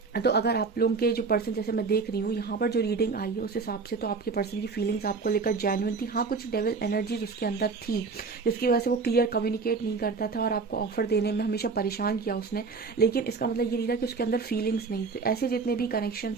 तो अगर आप लोगों के जो पर्सन, जैसे मैं देख रही हूँ यहाँ पर जो रीडिंग आई है उस हिसाब से, तो आपके पर्सन की फीलिंग्स आपको लेकर जेन्युइन थी। हाँ, कुछ डेविल एनर्जीज उसके अंदर थी जिसकी वजह से वो क्लियर कम्युनिकेट नहीं करता था और आपको ऑफर देने में हमेशा परेशान किया उसने, लेकिन इसका मतलब ये नहीं था कि उसके अंदर फीलिंग्स नहीं थे। ऐसे जितने भी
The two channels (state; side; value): quieter; left; 4.6 dB